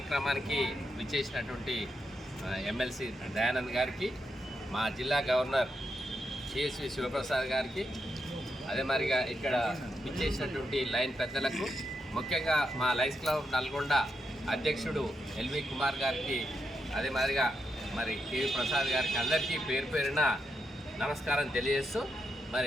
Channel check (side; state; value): both; normal; correlation 0.84